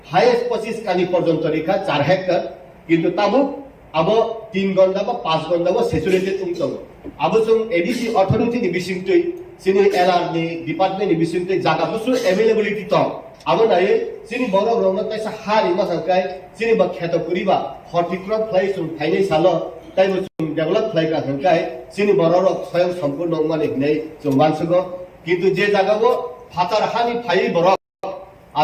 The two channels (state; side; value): identical; both; correlation 1.00